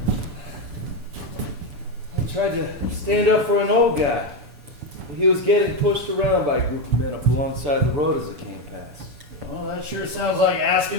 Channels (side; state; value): left; late; 7.0 ms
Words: I tried to stand up for an old guy. He was getting pushed around by a group of men up alongside the road as it came past. Well, that sure sounds like